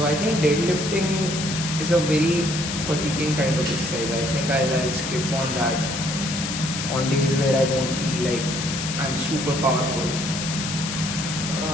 I think deadlifting is a very fatiguing kind of exercise. I think I'll skip on that on days where I don't feel like I'm super powerful.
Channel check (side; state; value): left; noise; hiss, 5 dB below the sound